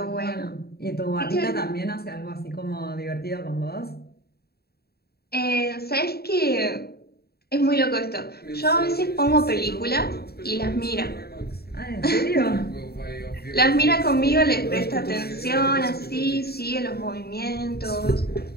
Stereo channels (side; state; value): right; late; 0.46 ms